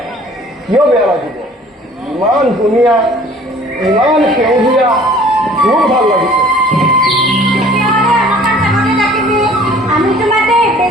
কিয় বেয়া লাগিব ইমান ধুনীয়া ইমান সেউজীয়া খুব ভাল লাগিছে আমি তোমাকে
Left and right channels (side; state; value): both; normal; correlation 0.51